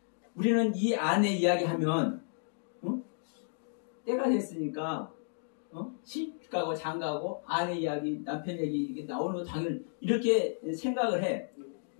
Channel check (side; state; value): right; silent; digital silence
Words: 우리는 이 아내 이야기 하면 때가 됐으니까 시집가고 장가고 아내 이야기, 남편 얘기 이게 나오는 거 당연히 이렇게 생각을 해.